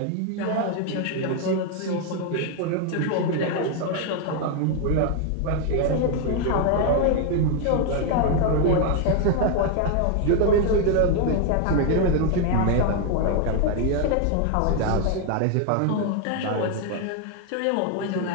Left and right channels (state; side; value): different; both; correlation 0.01